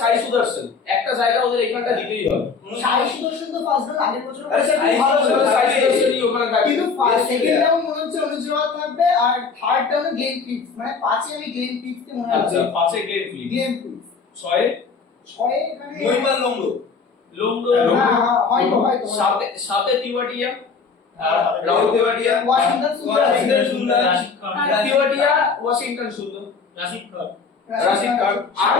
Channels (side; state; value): right; quieter; 5.0 dB